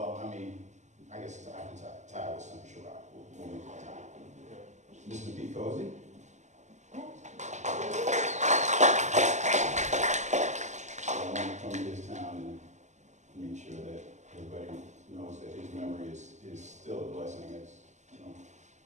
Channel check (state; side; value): late; left; 0.34 ms